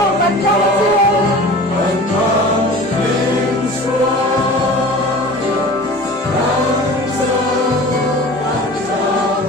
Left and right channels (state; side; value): normal; both; correlation 0.39